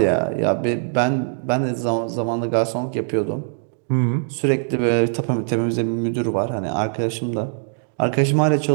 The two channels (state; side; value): silent; left; digital silence